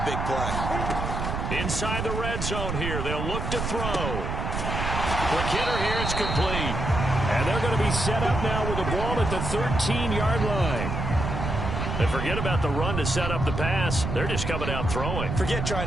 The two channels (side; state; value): right; noise; rumble, 3 dB below the sound